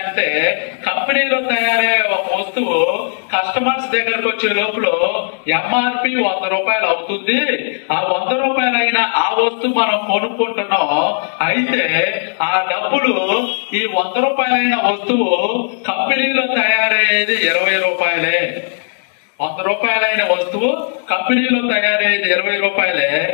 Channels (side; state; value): right; silent; digital silence